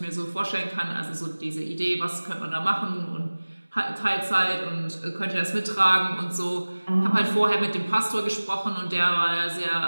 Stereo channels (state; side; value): inverted; both; correlation -1.00